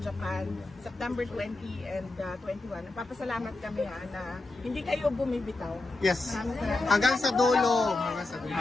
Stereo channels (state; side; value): quieter; right; 3.1 dB